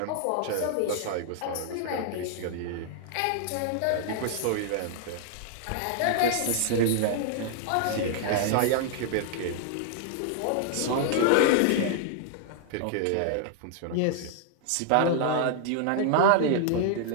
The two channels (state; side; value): different; both; correlation -0.01